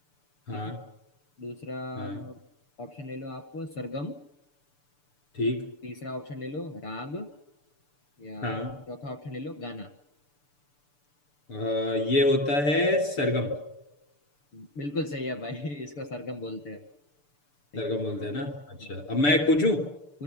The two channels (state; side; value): late; right; 6.8 ms